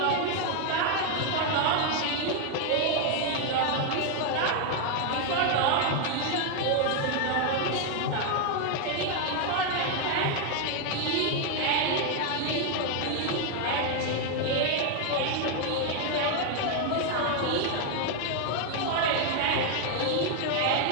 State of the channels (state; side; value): different; both; correlation 0.01